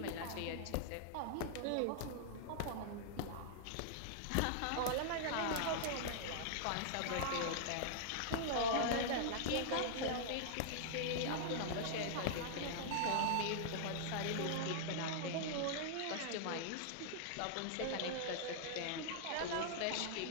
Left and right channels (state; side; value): different; both; correlation -0.01